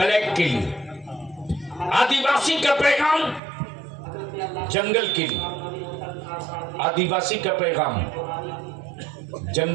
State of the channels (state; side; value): drops out; left; at 3.4 s